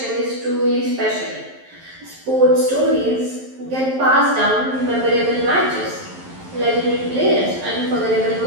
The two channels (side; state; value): left; late; 11 ms